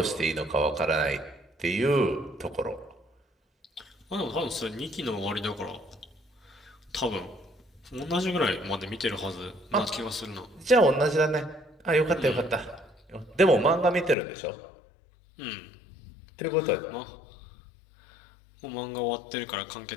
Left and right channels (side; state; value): right; drops out; at 14.2 s